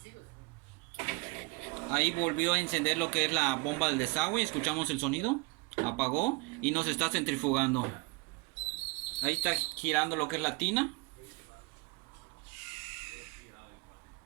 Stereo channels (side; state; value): left; quieter; 26.6 dB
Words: Ahí volvió a encender lo que es la bomba del desagüe, escuchamos el sonido, apagó y nos está centrifugando. Ahí está girando lo que es la tina.